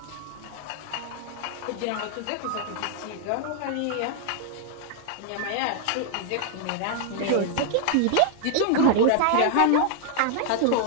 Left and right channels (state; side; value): different; both; correlation 0.00